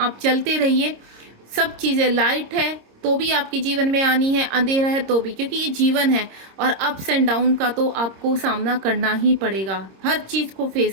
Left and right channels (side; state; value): left; late; 26 ms